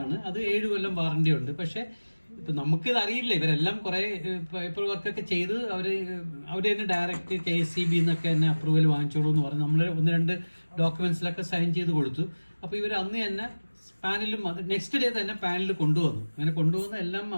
ആണ്. അത് 7 കൊല്ലം വാറണ്ടി ഉണ്ട്. പക്ഷെ ഇപ്പൊ നമുക്കിത് അറിയില്ല. ഇവരെല്ലാം കുറെ പേപ്പർ വർക്കൊക്കെ ചെയ്ത് അവര് തന്നെ ഡയറക്റ്റ് KSEB എന്നൊക്കെ തന്നെ അപ്രൂവൽ വാങ്ങിച്ചോളൂ എന്ന് പറഞ്ഞ് നമ്മൾ 1-2 ഡോക്യുമെന്റ്സിലൊക്കെ സൈൻ ചെയ്ത് കൊടുത്തു. അപ്പൊ ഇവർ അന്ന് തന്നെ പാനലും നെക്സ്റ്റ് ഡേ തന്നെ പാനൽ കൊണ്ടുവന്നു. അങ്ങനെ കൊണ്ടുവന്ന് എല്ലാം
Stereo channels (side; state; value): both; inverted; correlation -1.00